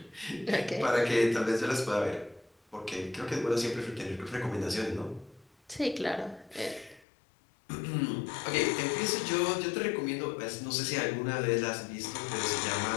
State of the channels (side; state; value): right; drops out; at 7.1 s